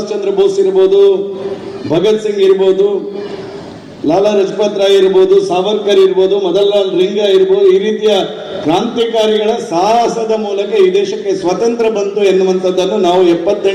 ಚಂದ್ರ ಬೋಸ್ ಇರ್ಬೋದು, ಭಗತ್ ಸಿಂಗ್ ಇರ್ಬೋದು, ಲಾಲಾ ಲಜಪತ್ ರಾಯ್ ಇರ್ಬೋದು, ಸಾವರ್ಕರ್ ಇರ್ಬೋದು, ಮದನ್ಲಾಲ್ ರಿಂಗಾ ಇರ್ಬೋದು, ಈ ರೀತಿಯ ಕ್ರಾಂತಿಕಾರಿಗಳ ಸಾಹಸದ ಮೂಲಕ ಈ ದೇಶಕ್ಕೆ ಸ್ವಾತಂತ್ರ್ಯ ಬಂತು ಎನ್ನುವಂಥದ್ದನ್ನು ನಾವು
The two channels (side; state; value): both; identical; correlation 1.00